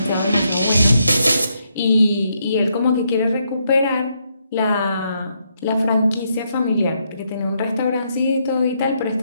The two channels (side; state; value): both; inverted; correlation -0.77